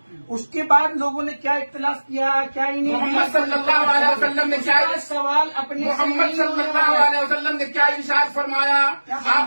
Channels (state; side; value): inverted; both; correlation -1.00